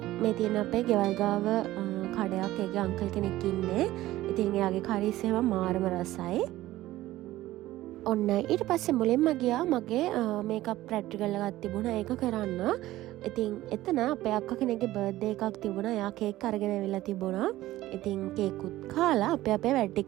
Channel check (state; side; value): quieter; left; 16.0 dB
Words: මේ තියෙන අපේ ගෙවල් ගාව කඩයක් ඒකේ අංකල් කෙනෙක් ඉන්නේ. ඉතින් එයාගේ කරීස් එහෙම මාරම රසයි. ඔන්න ඊට පස්සේ මුලින්ම ගියා මගේ මේකප් ප්‍රැක්ටිකල් එකක් තිබුණා ඒක කරන්න. ඉතින් එතන අපේ අක්කා කෙනෙක්ගේ බර්ත්ඩේ එකක් තිබුණා. එයා කේක් අරගෙන ඇවිල්ලා තිබුණා. ඉතින් කේකුත් කාලා අපේ වැඩ